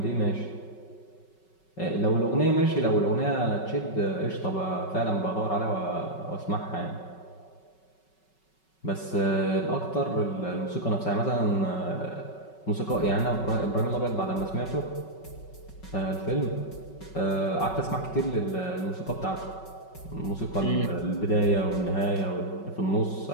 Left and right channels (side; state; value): right; late; 5.3 ms